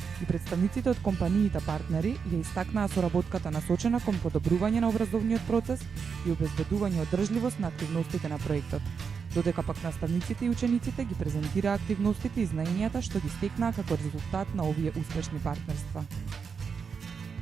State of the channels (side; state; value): left; quieter; 6.0 dB